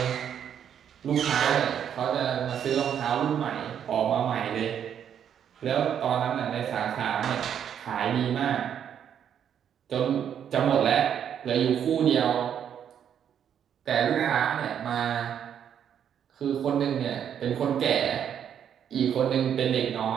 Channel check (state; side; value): quieter; left; 8.9 dB